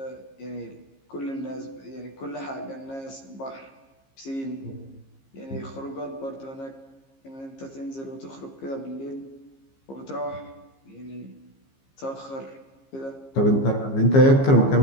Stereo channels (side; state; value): right; late; 15 ms